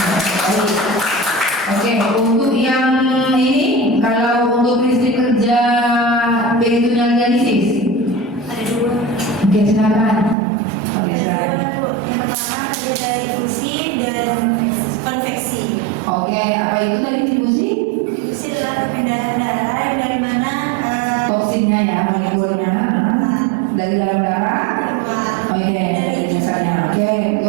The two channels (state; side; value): drops out; left; at 10.4 s